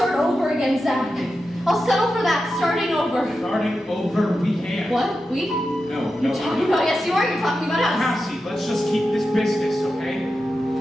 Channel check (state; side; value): normal; both; correlation 0.90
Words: over again, Zach. I'll settle for that, starting over. Starting over, we can't. What? We? No, You're talking about, yes you are, you're talking about us. Cassie, let's just keep this business, okay?